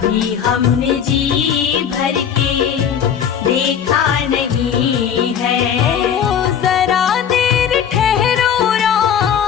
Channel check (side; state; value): right; quieter; 8.3 dB